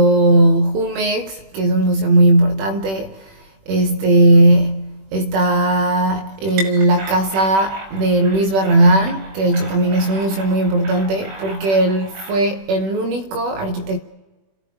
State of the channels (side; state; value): left; late; 21 ms